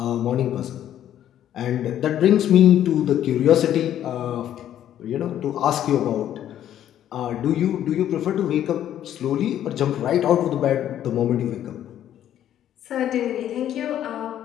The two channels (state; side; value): quieter; right; 11.1 dB